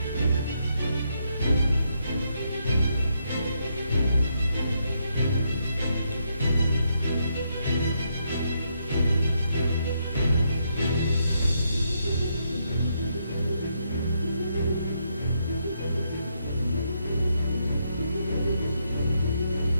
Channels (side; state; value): both; inverted; correlation -0.78